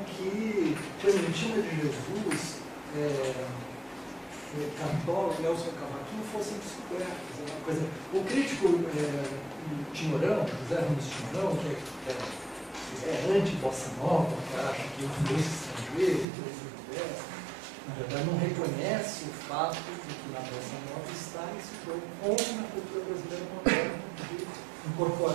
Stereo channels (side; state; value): left; drops out; at 16.2 s